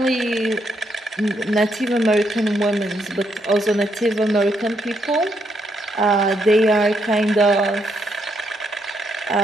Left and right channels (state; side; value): normal; both; correlation 0.76